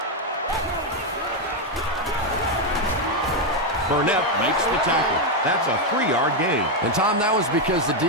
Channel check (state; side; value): normal; both; correlation 0.03